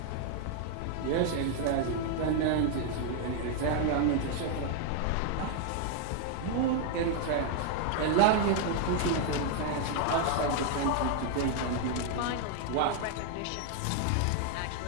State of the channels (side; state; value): both; different; correlation 0.00